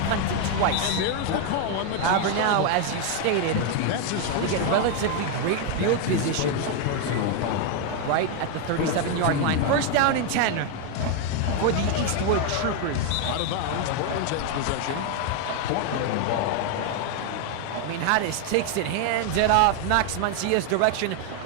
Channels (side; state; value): both; different; correlation 0.01